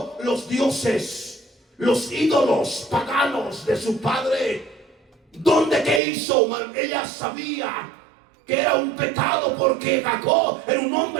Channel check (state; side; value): drops out; left; at 6.0 s